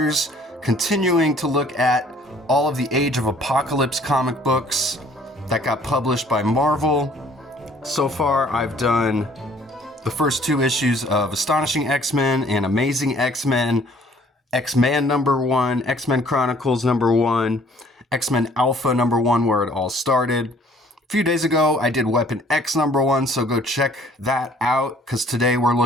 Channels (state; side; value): normal; both; correlation 0.57